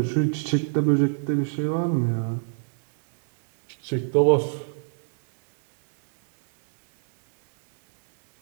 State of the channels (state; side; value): silent; left; 63 dB below the other